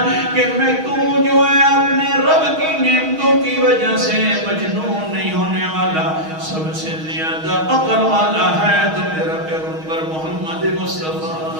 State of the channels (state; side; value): late; left; 6.3 ms